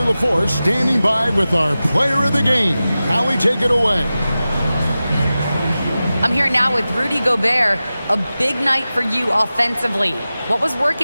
LaForce, standing by with our player of the game. Allie, take it away. I'm here now with Rudy Gobert. A big night for you offensively. What was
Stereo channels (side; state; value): both; inverted; correlation -0.95